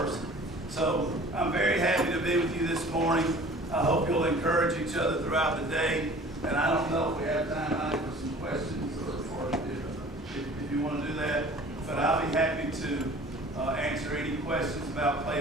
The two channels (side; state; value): both; normal; correlation 0.47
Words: So I'm very happy to be with you this morning. I hope you'll encourage each other throughout the day. And I don't know if we have time for some questions or if you want to do that. But I'll be happy to answer any questions about